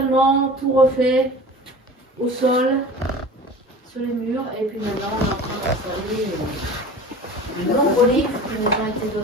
tout refait, au sol, sur les murs, et puis maintenant on est en train d'installer de nombreux livres qui nous ont été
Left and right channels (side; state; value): both; normal; correlation 0.38